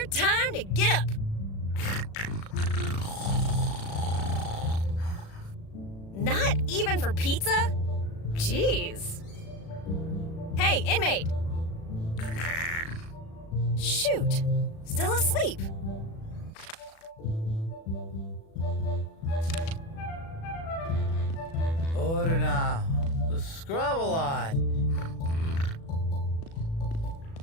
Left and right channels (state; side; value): late; right; 36 ms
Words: time to get up! Not even for pizza? Jeez. Hey, inmate! Shoot, still asleep. Order now. The scrub a lot.